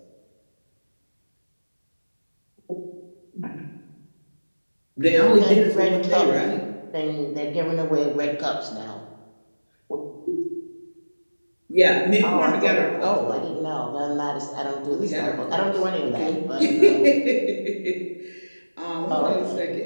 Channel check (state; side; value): inverted; both; correlation -1.00